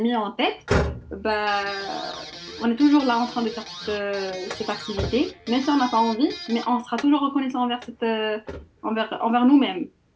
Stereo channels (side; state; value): both; identical; correlation 1.00